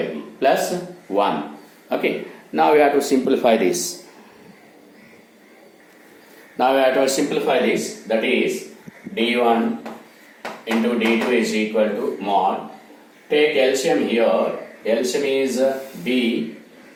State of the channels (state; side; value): identical; both; correlation 1.00